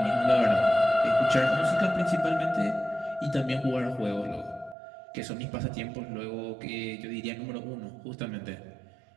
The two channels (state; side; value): drops out; left; at 4.8 s